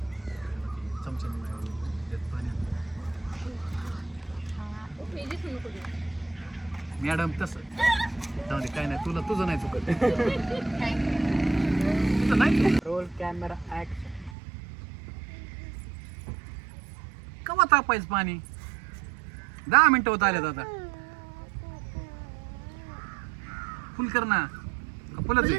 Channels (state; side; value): drops out; left; at 14.4 s